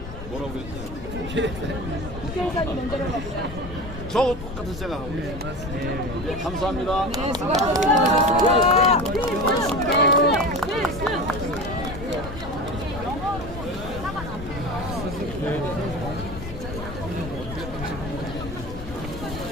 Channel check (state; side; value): noise; left; rumble, 10 dB below the sound